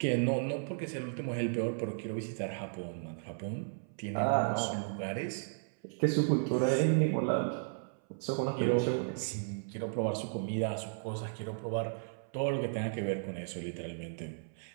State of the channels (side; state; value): left; silent; 55 dB below the other